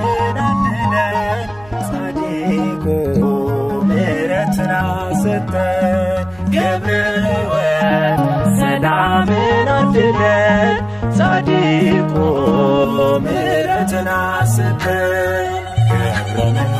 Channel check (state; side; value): noise; right; hum, 25 dB below the sound